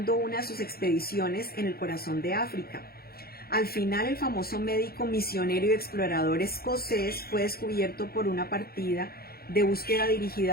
una de sus expediciones en el corazón de África. Al final, el famoso médico misionero y explorador escocés fue descubierto por una partida de búsqueda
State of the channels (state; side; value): late; right; 0.44 ms